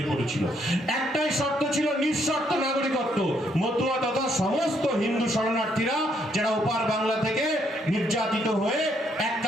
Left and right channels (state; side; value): normal; both; correlation 0.72